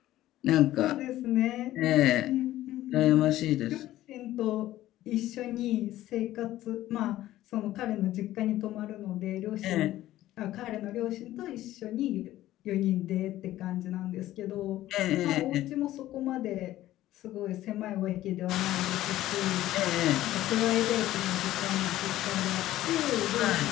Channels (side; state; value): right; quieter; 14.7 dB